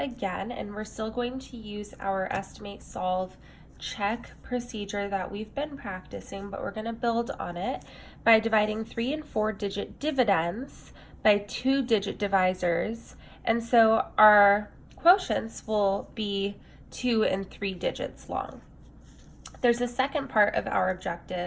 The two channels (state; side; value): identical; both; correlation 1.00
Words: and we're still going to use our estimate, solve, check procedure that we've been practicing, but we're going to build on it by dividing 3 and 4 digit dividends by 2-digit divisors. And so our quotients will be 2 and 3 digits long. There's a second part of our